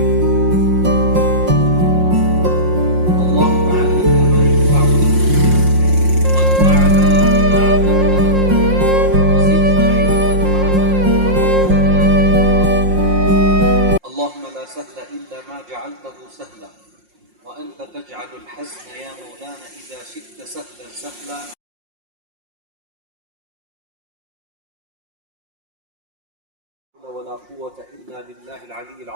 سهلا وأنت تجعل الحزن يا مولانا إذا شئت سهلا سهلا ولا قوة إلا بالله العلي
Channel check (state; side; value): late; left; 5.6 ms